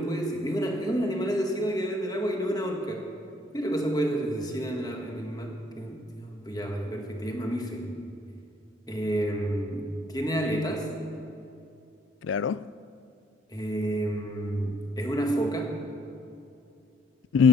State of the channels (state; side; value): normal; both; correlation 0.65